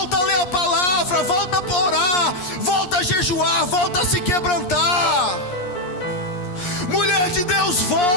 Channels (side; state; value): right; late; 11 ms